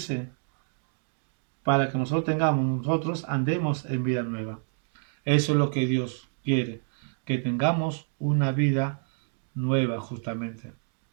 para que nosotros andemos en vida nueva. Eso es lo que Dios quiere, que tengamos una vida nueva justamente.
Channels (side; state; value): left; silent; 59 dB below the other